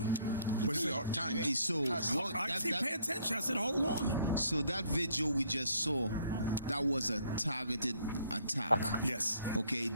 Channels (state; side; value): inverted; both; correlation -0.64